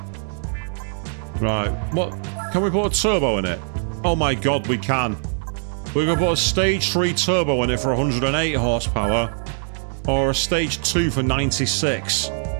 Right. What? Can we put a turbo in it? Oh, my God, we can. We're going to put a stage 3 turbo in it for 108 horsepower. Or a stage 2 for 96.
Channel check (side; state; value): left; silent; 64 dB below the other